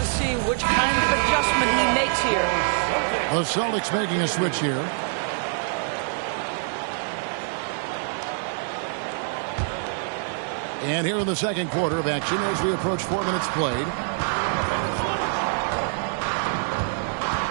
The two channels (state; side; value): silent; left; digital silence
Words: see which kind of adjustment he makes here. The Celtics making a switch here. And here in the second quarter of action as we approach 4 minutes played.